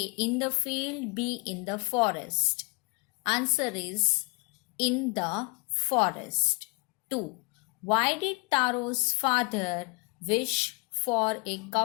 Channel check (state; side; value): quieter; right; 29.8 dB